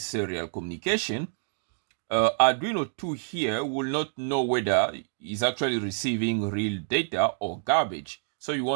serial communication, Arduino 2 here will not know whether it's actually receiving real data or garbage. So you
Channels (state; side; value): silent; left; digital silence